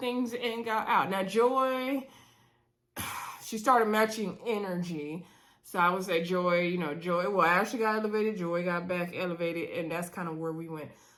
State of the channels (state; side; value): identical; both; correlation 1.00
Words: and got out. Now, Joy, she started matching energy. So I would say Joy, Ashley got elevated, Joy got back elevated, and that's kind of where we went